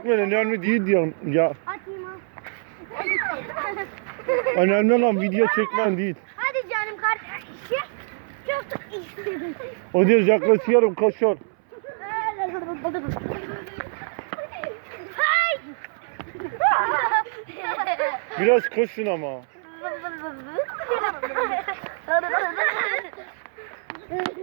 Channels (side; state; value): left; silent; 62 dB below the other